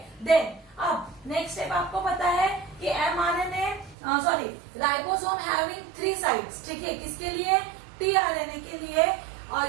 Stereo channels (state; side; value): drops out; left; at 4.0 s